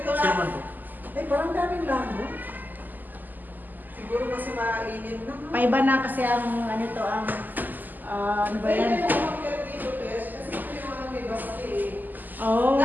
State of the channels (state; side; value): late; left; 0.086 ms